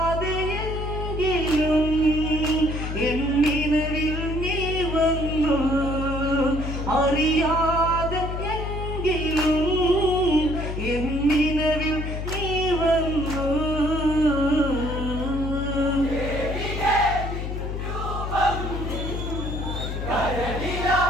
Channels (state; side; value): noise; left; hum, 4 dB below the sound